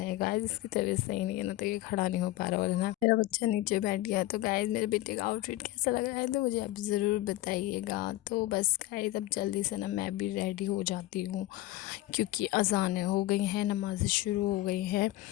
गाइस इसकी तबीयत सही नहीं है ना, तो ये खड़ा नहीं हो पा रहा, और ना मेरा बच्चा नीचे बैठ गया। तो गाइस मेरे बेटे का आउटफिट कैसा लग रहा है तो मुझे आप ज़रूर बताइएगा। तो बस गाइस अब जल्दी से ना मैं भी रेडी हो जाती हूँ, क्योंकि अज़ानें हो गई हैं, नमाज़ें शुरू हो गई हैं।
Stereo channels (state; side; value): quieter; right; 16.4 dB